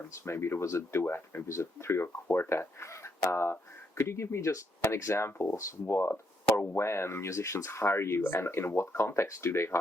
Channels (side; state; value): both; normal; correlation 0.76